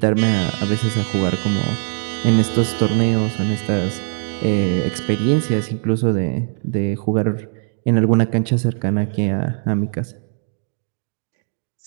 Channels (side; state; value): left; silent; 63 dB below the other